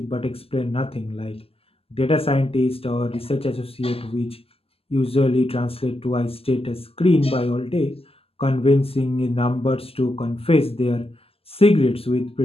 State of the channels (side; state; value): right; late; 0.28 ms